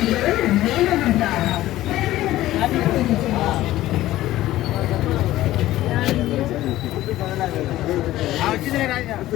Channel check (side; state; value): right; quieter; 15.3 dB